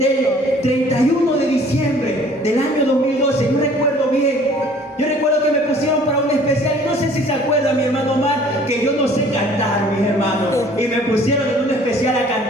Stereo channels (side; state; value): both; normal; correlation 0.53